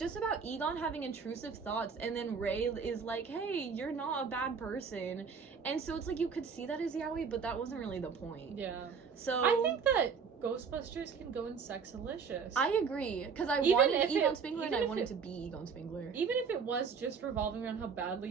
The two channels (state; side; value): quieter; left; 5.9 dB